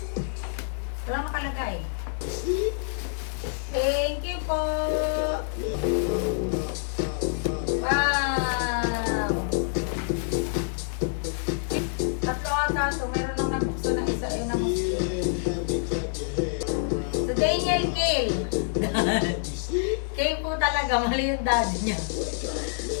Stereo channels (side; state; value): right; silent; digital silence